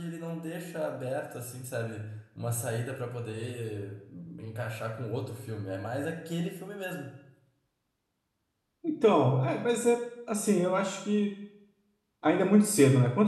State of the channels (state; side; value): identical; both; correlation 1.00